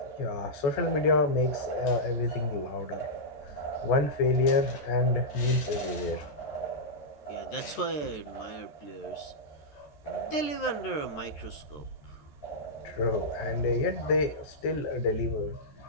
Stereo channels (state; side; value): late; right; 13 ms